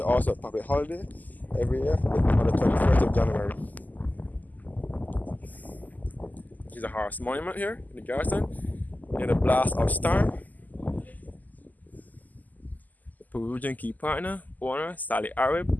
a public holiday every year on the 21st of January. There's a horse monument here in the Garrison, near the blast of storm. The Peruvian key partner, owner Sally Arab,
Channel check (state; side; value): late; right; 0.082 ms